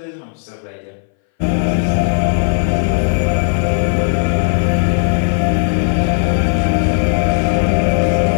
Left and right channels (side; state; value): right; silent; 62 dB below the other